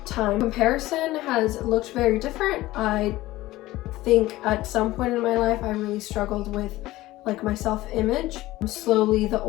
time, comparison has looked very different. I think at some point in my life I really struggled with like my self-image. Slowly, the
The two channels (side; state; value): right; quieter; 17.3 dB